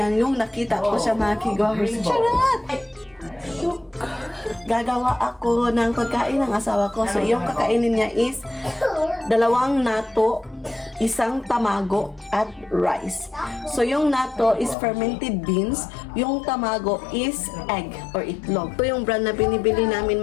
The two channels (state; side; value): drops out; right; at 14.8 s